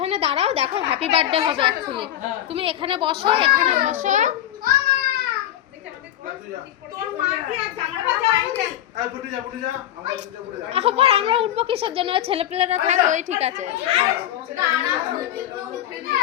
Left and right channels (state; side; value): quieter; right; 12.1 dB